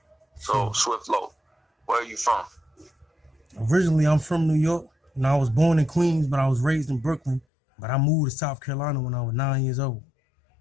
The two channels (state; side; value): drops out; right; at 7.5 s